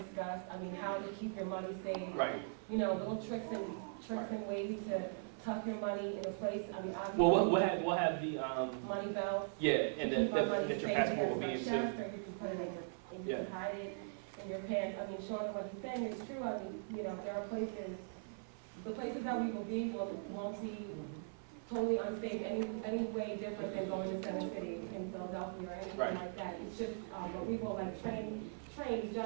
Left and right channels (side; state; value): left; silent; 51 dB below the other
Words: I mean, how to keep your money safe. Right. You know, little tricks and ways to tuck your money in a place. I mean, obviously. Well, we'll have the money belts. yeah, and keep our money that your safe passport will against be my in chest, too. or you can put it in your, and you Yeah. can hide it in your pants. I mean, Sean, what he's saying is true. I mean, you know, there are places, the places that we will be won't be totally unsafe any way different than going to Center City in Philadelphia or anything Right. like that. It's just, but we will like train each